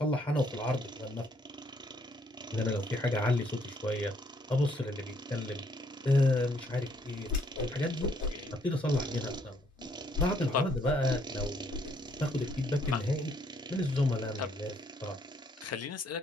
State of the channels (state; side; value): normal; both; correlation 0.68